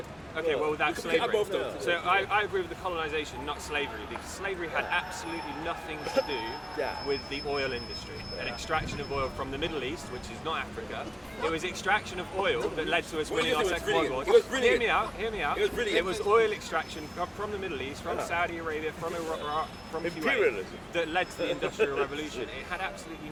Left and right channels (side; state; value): both; identical; correlation 1.00